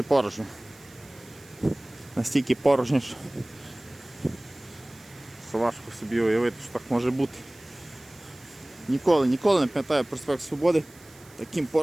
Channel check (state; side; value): noise; right; hiss, 24 dB below the sound